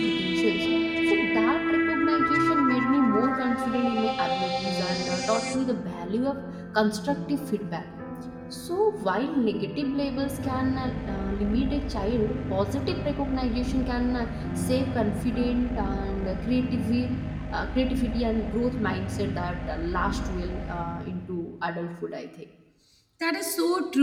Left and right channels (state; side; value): identical; both; correlation 1.00